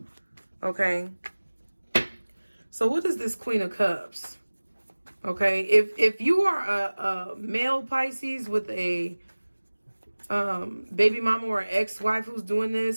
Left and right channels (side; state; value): both; inverted; correlation -1.00